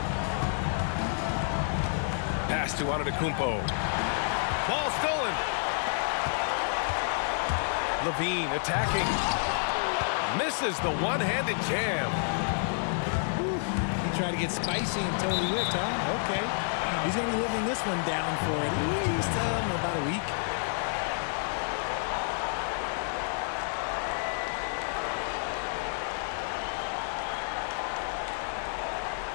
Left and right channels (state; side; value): silent; right; 57 dB below the other